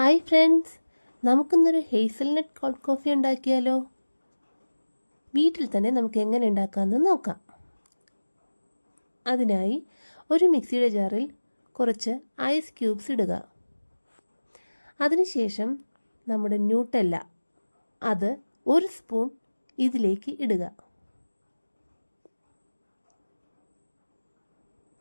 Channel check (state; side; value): inverted; both; correlation -1.00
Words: friends, നമുക്കിന്നൊരു hazelnut cold coffee ഉണ്ടാക്കിയാലോ? വീട്ടിൽ തന്നെ നമുക്ക് എങ്ങനെ ഉണ്ടാക്കാമെന്ന് നോക്കാം. അതിനായി ഒരു മിക്സിയുടെ ജാറിൽ കുറച്ച് ഐസ് ക്യൂബ്സ് ഇടുക. അതിനുശേഷം നമ്മുടെ ന്യൂട്ടെല്ല അത് 1 സ്പൂൺ ഇതിലേക്ക് ഇടുക.